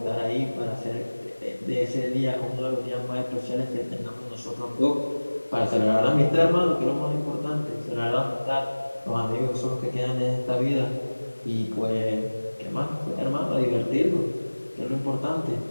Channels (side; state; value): both; inverted; correlation -1.00